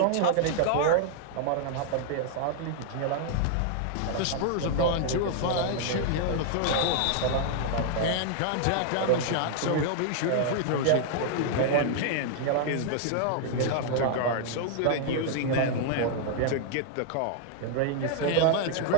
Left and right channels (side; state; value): both; different; correlation 0.00